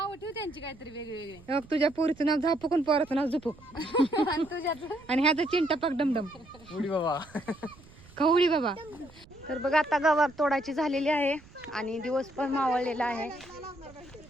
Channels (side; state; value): right; noise; rumble, 23 dB below the sound